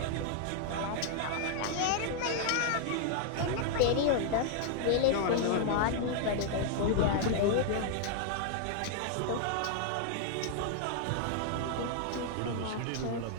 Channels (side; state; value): both; different; correlation -0.01